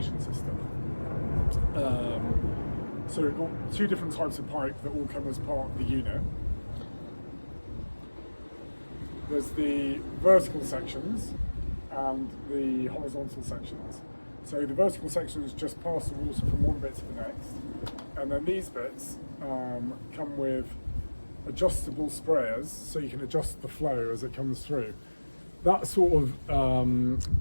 system. So we've got two different types of pipe that all come as part of the unit. There's the vertical sections and the horizontal sections. So the vertical sections just pass the water from one bit to the next, and then these bits come with adjustable sprayers, so you can adjust the flow as it comes through. That sort of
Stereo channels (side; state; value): both; inverted; correlation -1.00